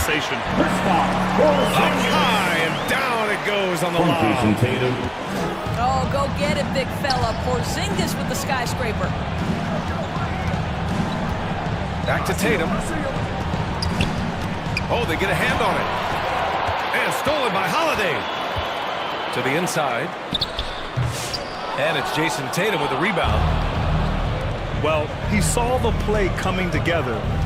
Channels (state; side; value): identical; both; correlation 1.00